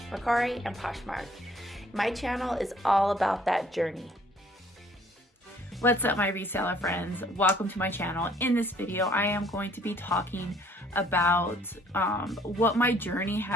Mercari, and Poshmark. My channel is all about that journey. What's up, my reseller friends? Welcome to my channel. In this video, I am going to be talking about what my journey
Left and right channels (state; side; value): normal; both; correlation 0.60